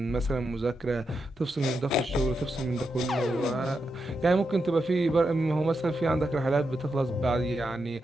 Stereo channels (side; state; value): both; normal; correlation 0.85